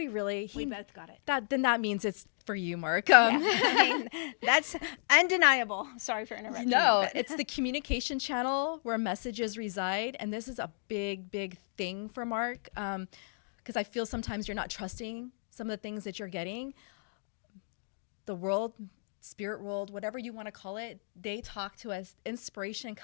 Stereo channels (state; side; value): silent; right; digital silence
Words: really? We both got it. Then that means it's for you, Mark. Yeah. I mean, that's undeniable. Sorry for interrupting. No, you, but- it's the communication channel where messages reside. And this is a big, big thing for Mark. Because I feel sometimes you're not trusting some of the things that you're getting. The world, spirit world, whatever you want to call it, they talk to us. Inspiration